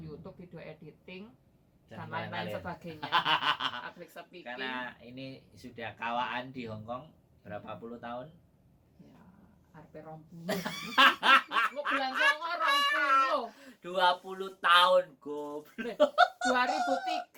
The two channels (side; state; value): both; identical; correlation 1.00